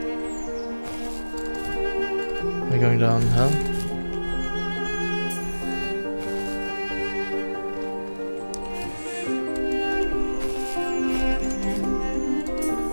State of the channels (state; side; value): inverted; both; correlation -1.00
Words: We're going down hell.